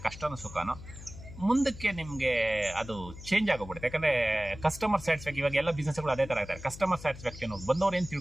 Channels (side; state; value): left; noise; hum, 14 dB below the sound